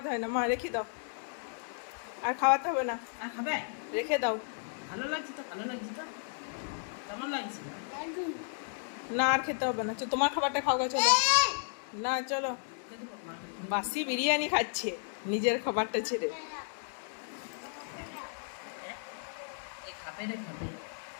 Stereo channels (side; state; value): right; silent; digital silence